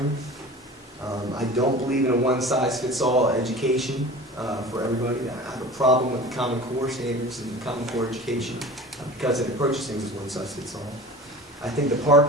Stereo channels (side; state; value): both; normal; correlation 0.38